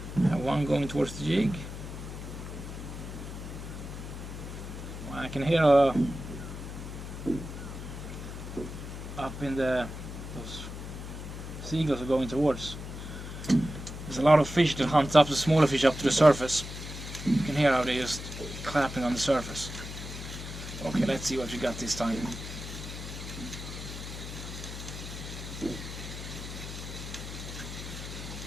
I have one going towards the jig. I can hear up in those seagulls are going towards. There's a lot of fish that hunts up the smaller fish up to the surface. You can hear how they're just clapping on the surface. Okay, let's see what we got this time.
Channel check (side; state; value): left; noise; hum, 9 dB below the sound